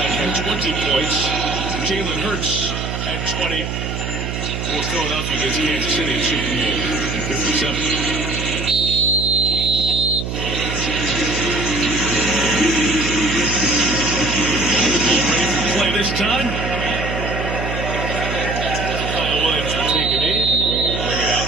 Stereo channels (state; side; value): noise; right; hum, 4 dB below the sound